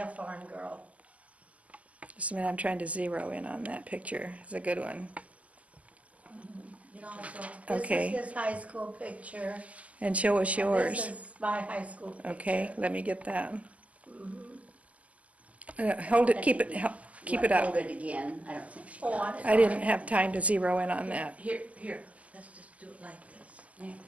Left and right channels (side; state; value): left; late; 0.066 ms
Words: farm girl. Just a minute, I'm trying to zero in on that picture. It's a good one. You know, so Okay. This is his high school picture. And show us And yours. this is my high school picture. Okay, let me get that. Hold it, keep it up. Hold it again, I don't think she Oh, got I'm it. I didn't have time to zero in on that. here, let's just do it like this. There,